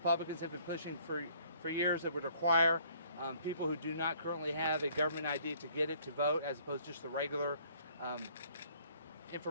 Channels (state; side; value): inverted; both; correlation -0.60